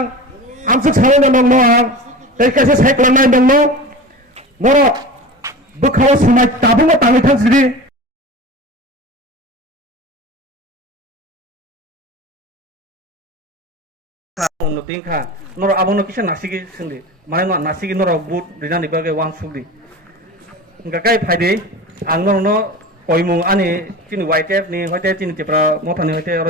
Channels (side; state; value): both; normal; correlation 0.33